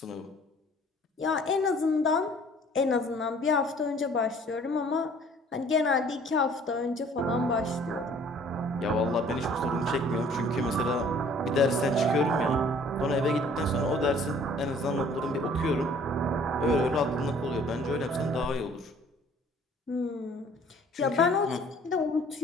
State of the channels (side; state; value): both; normal; correlation 0.54